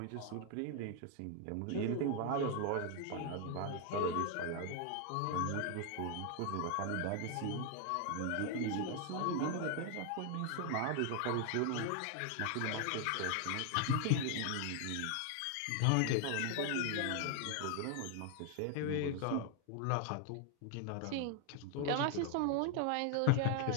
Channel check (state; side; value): different; both; correlation 0.00